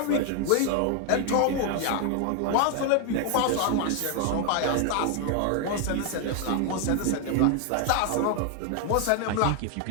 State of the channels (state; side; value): different; both; correlation 0.00